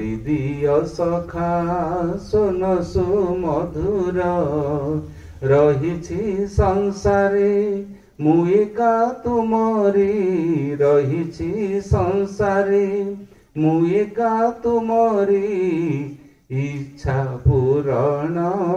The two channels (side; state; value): both; identical; correlation 1.00